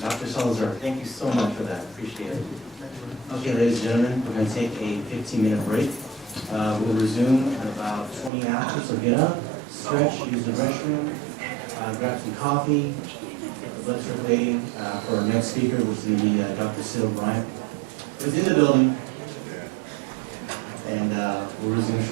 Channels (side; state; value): left; drops out; at 8.3 s